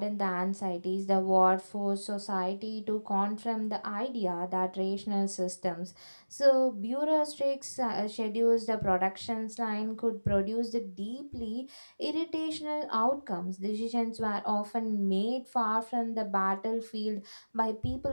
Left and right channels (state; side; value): inverted; both; correlation -1.00